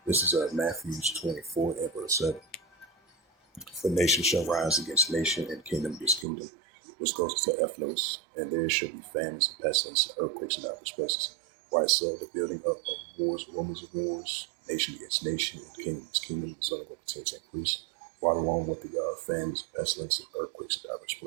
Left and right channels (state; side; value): drops out; left; at 6.2 s